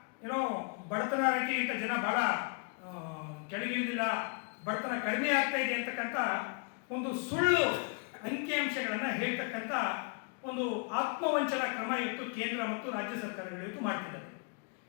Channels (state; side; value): quieter; right; 37.7 dB